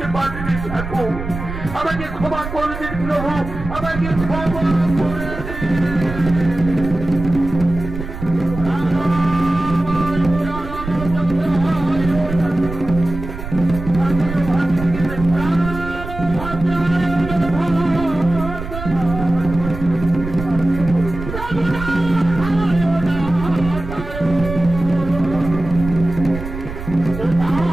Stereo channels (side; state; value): right; noise; rumble, 9 dB below the sound